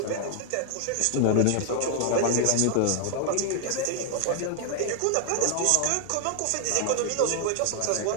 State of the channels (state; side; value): different; both; correlation 0.00